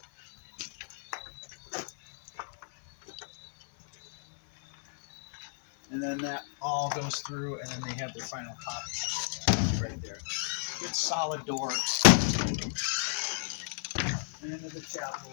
And then that all goes through, and then they have their final copy right there. Good solid door. And into the chapel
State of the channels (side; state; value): right; silent; 57 dB below the other